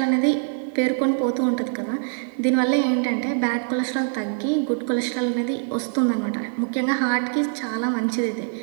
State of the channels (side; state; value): left; silent; digital silence